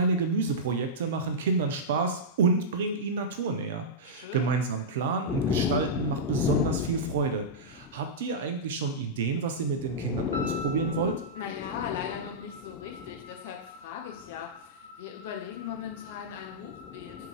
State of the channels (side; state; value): both; normal; correlation -0.12